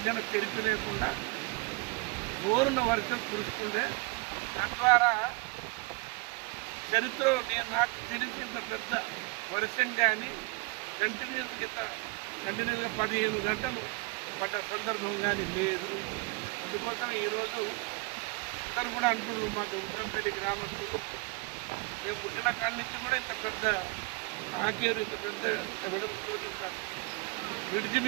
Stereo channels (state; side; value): quieter; left; 25.5 dB